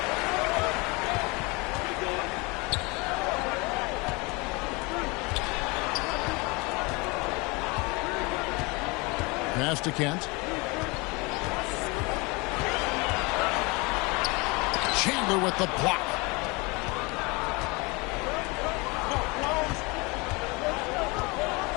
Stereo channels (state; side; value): quieter; right; 26.9 dB